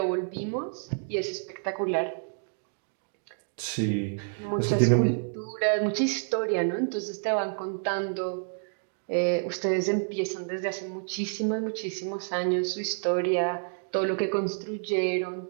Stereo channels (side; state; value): left; silent; digital silence